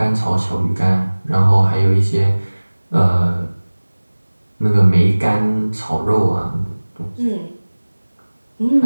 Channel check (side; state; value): both; inverted; correlation -1.00